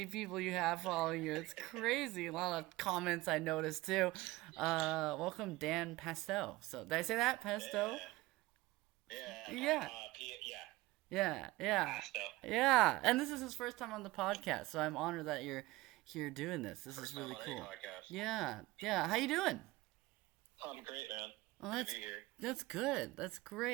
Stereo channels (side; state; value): left; quieter; 19.8 dB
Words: people you have following you. It's crazy. A lot of comments I noticed too. Welcome, Dan Pasto. So, did I say that? Pasto? Yeah. Yeah. Yeah. Yeah. Yeah. Yeah. Pasto. Yeah. And this is his first time on the podcast, so I'm honored that you're here doing this. This is First time really on any cool. podcast. Yeah. Yeah. How you doing? I'm great, man. Well, Good to be here. that's good. That's